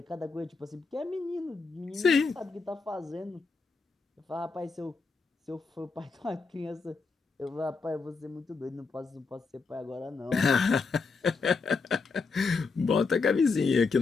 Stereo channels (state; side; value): quieter; right; 4.5 dB